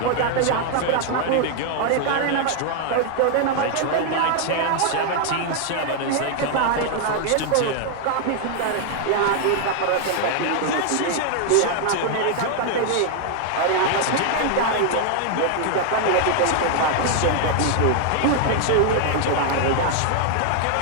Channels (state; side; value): different; both; correlation 0.00